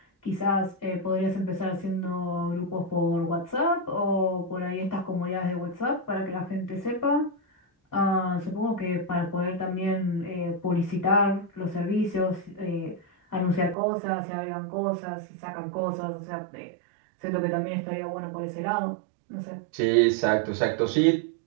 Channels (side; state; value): left; drops out; at 13.8 s